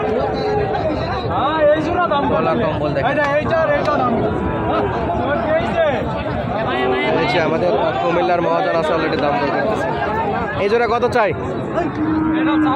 গলা কম্বল দেখেন। আমাদের কুমিল্লার মহাজন আছে অলরেডি দাম দর করতেছে। এই জোড়া কত চাই?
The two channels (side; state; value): both; identical; correlation 1.00